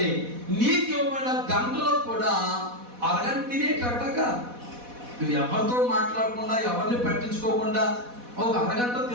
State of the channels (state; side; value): late; left; 4.1 ms